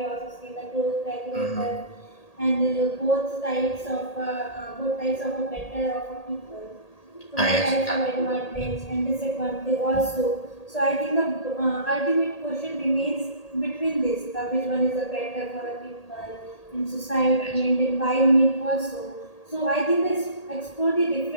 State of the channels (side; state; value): right; late; 1.8 ms